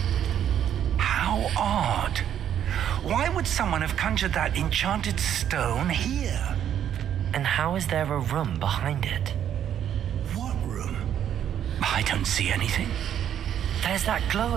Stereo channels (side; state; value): left; quieter; 9.9 dB